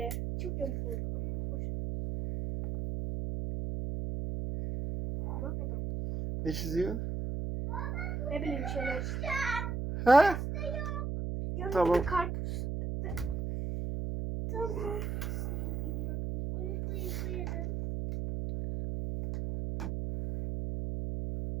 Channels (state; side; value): noise; right; hum, 2 dB below the sound